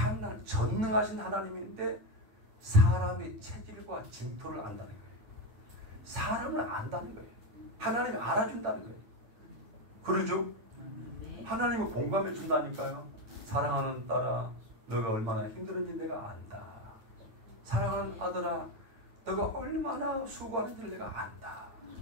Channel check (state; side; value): late; left; 9.5 ms